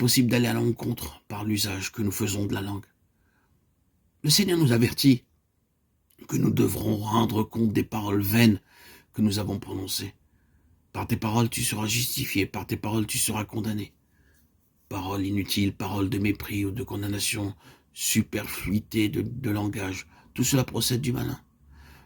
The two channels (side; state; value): both; identical; correlation 1.00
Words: d'aller à l'encontre par l'usage que nous faisons de la langue. Le Seigneur nous avertit que nous devrons rendre compte des paroles vaines que nous avons prononcées. Par tes paroles, tu seras justifié, par tes paroles, tu seras condamné. Paroles inutiles, paroles de mépris ou de condamnation, superfluité de langage, tout cela procède du malin.